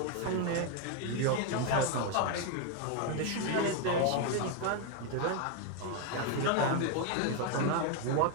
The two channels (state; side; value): different; both; correlation 0.01